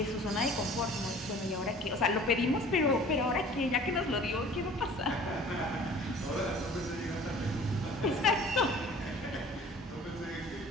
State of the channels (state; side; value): normal; both; correlation 0.47